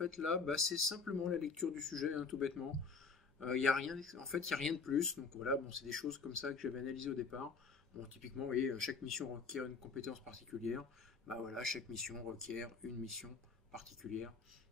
là, c'est simplement la lecture du sujet, hein, tout bêtement. Il y a rien, en fait il n'y a rien de plus. Donc voilà, bon, c'est des choses comme ça que j'avais analysées au départ. Bon, typiquement, vous voyez, chaque mission requiert une compétence particulière. Voilà, chaque mission requiert une mission particulière,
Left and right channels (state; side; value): quieter; right; 4.7 dB